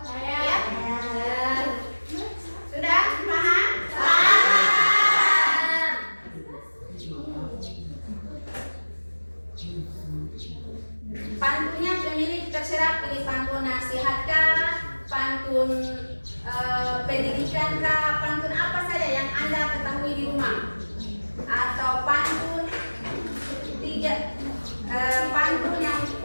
Ya? Sudah paham? Pantunnya pemilik terserah, pilih pantun nasihatkah, pantun pendidikan kah, pantun apa saja yang Anda ketahui di rumah, atau pantun pantun yang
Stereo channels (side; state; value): both; inverted; correlation -1.00